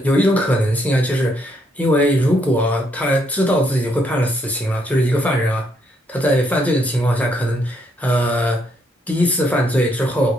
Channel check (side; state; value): both; normal; correlation 0.73